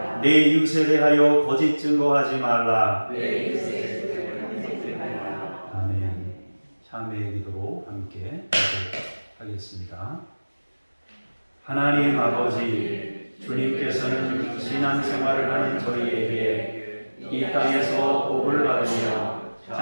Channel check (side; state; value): both; inverted; correlation -1.00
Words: 내 이웃에 대하여 거짓 증거하지 말라. 아멘. 참회의 기도로 함께 하겠습니다. 하나님 아버지, 주님께서는 신앙생활을 하는 저희에게 이 땅에서 복을 받으며